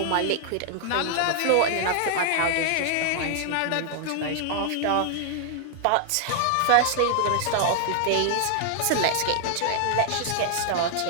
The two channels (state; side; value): different; both; correlation 0.00